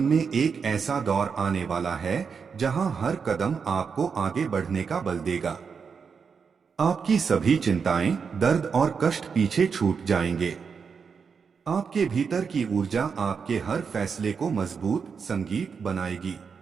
में एक ऐसा दौर आने वाला है जहां हर कदम आपको आगे बढ़ने का बल देगा। आपकी सभी चिंताएं, दर्द और कष्ट पीछे छूट जाएंगे। आपके भीतर की ऊर्जा आपके हर फैसले को मजबूत संगीत बनाएगी।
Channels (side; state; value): left; quieter; 5.9 dB